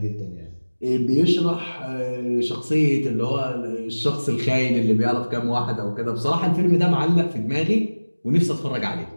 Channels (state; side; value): inverted; both; correlation -1.00